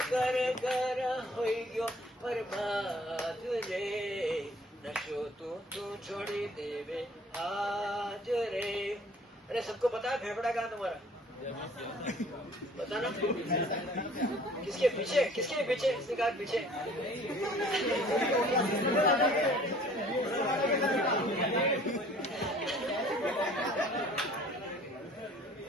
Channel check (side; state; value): both; normal; correlation 0.52